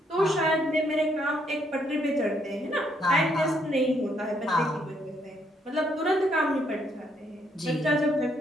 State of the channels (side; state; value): both; normal; correlation 0.72